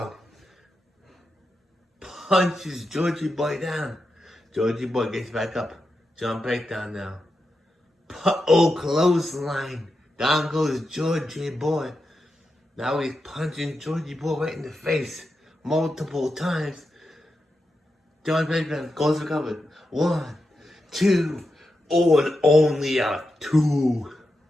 punches Georgie Boy down. Georgie Boy gets back up. John Breakdown now. Clothesline. Down goes Georgie Boy. Now he's punching Georgie Boy right in the face multiple times. John Breakdown goes recovered. 1, 2, and only a 2.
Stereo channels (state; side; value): normal; both; correlation 0.88